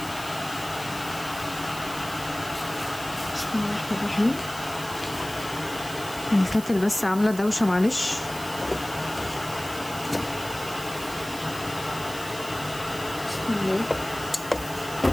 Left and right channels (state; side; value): noise; right; hiss, 13 dB below the sound